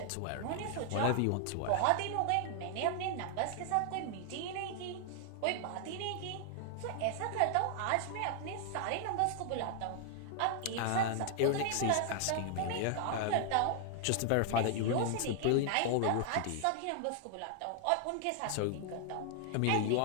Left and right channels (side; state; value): both; different; correlation 0.00